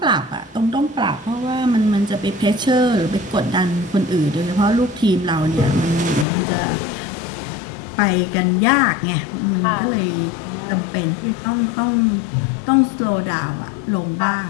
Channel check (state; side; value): drops out; right; at 6.2 s